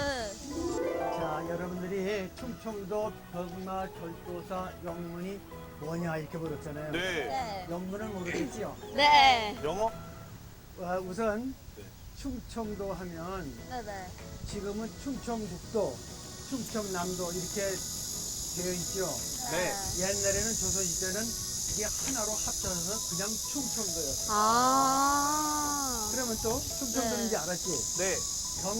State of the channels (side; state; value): both; identical; correlation 1.00